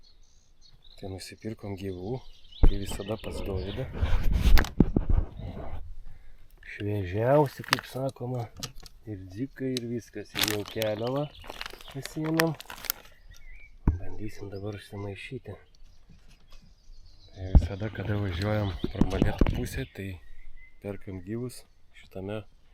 tai nusipirkom gyvų, tai visada pas Dovydą. Šviežiausi, kaip sakoma, ir dzikai, ir viskas, ir jau keliavą pasiėmėm. Bandysim dabar užsimaišyti. Tai visada, kada važiuojam pro Molėtų pusę, tai perkam gyvus šitame,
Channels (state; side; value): identical; both; correlation 1.00